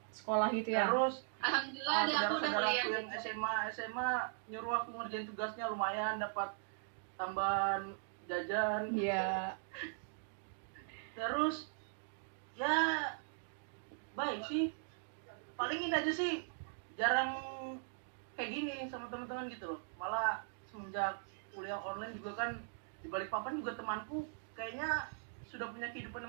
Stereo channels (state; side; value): silent; left; digital silence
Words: Sekolah gitu ya. Alhamdulillah Terus deh aku udah saudara-saudara kuliah. aku yang SMA nyuruh aku ngerjain tugasnya, lumayan dapat tambahan jajan. Iya. Terus ya baik sih, paling ini aja sih, jarang kayak gini sama teman-teman gitu loh. Malah semenjak kuliah online juga kan di Balikpapan juga temanku kayaknya sudah punya